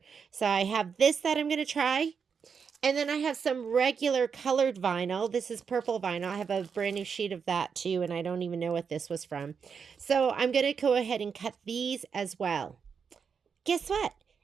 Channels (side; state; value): left; quieter; 6.3 dB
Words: So I have this that I'm going to try. And then I have some regular colored vinyl. This is purple vinyl. I have a brand new sheet of that too, and I don't even know what this was from. So I'm going to go ahead and cut these as well. Guess what?